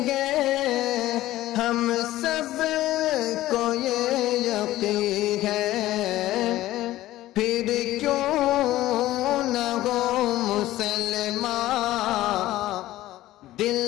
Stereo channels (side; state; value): right; quieter; 15.6 dB